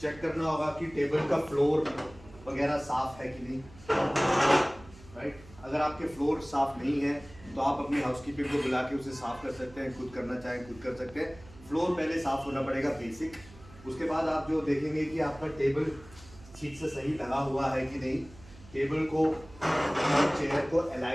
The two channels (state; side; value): noise; right; hum, 21 dB below the sound